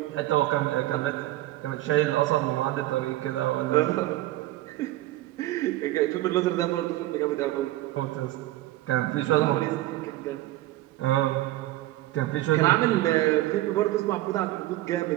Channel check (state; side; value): quieter; left; 16.4 dB